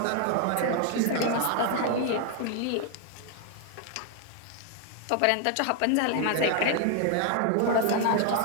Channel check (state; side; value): different; both; correlation 0.00